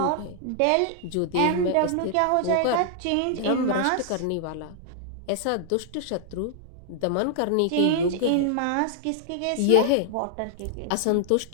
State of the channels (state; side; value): different; both; correlation -0.01